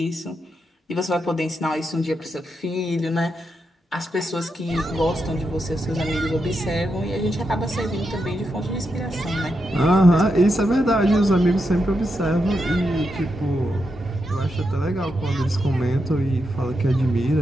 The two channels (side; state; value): both; normal; correlation 0.85